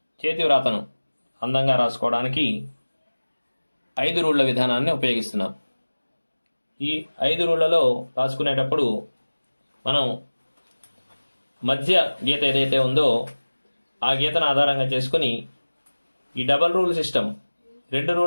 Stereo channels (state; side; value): inverted; both; correlation -1.00